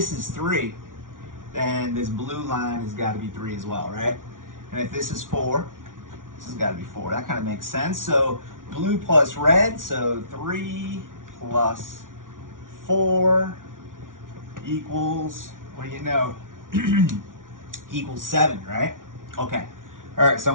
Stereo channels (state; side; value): late; left; 0.88 ms